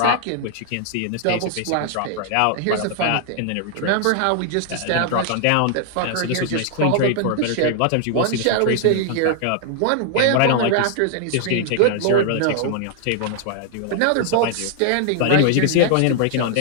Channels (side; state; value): both; different; correlation 0.00